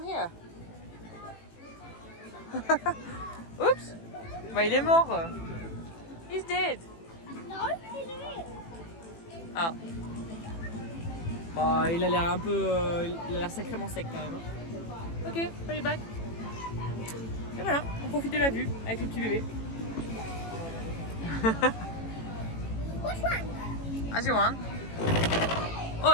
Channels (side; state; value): right; late; 18 ms